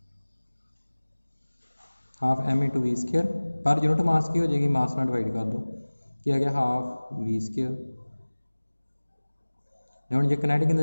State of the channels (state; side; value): inverted; both; correlation -1.00